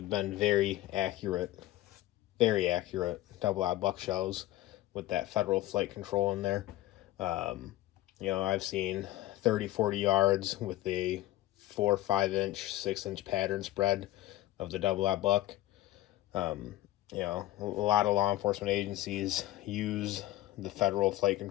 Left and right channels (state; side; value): quieter; right; 15.7 dB